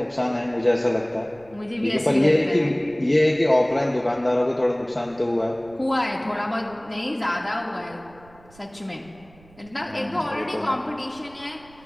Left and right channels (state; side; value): noise; right; rumble, 26 dB below the sound